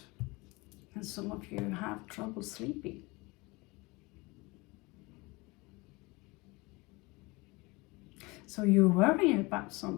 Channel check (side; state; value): right; quieter; 24.6 dB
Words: and some of you have trouble sleeping. So you're worrying about